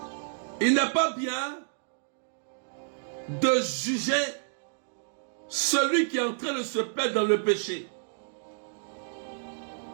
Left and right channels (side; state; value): left; silent; digital silence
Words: il n'est pas bien de juger celui qui est en train de se perdre dans le péché.